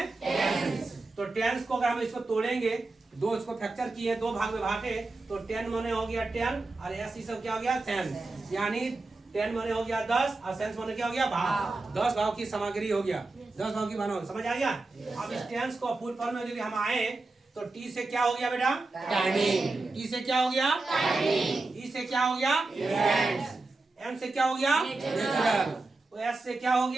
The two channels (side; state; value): left; quieter; 3.3 dB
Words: टेंस। तो टेंस को अगर हम इसको तोड़ेंगे, दो इसको फ्रैक्चर किए, दो भाग में बांटे, तो 10 माने हो गया 10 और एस ई सब क्या हो गया सेंस, यानी 10 माने हो गया 10 और सेंस माने क्या हो गया भाव। 10 भाव की सामग्री हो गया, 10 भाव की भाव, समझ आ गया। अब इस टेंस को फुल फॉर्म में यदि हम आए तो टी से क्या हो गया बेटा, टाइमिंग। टी से क्या हो गया, टाइमिंग। ई से क्या हो गया, इवेंट्स। एम से क्या हो गया, नेचुरल। एस से क्या हो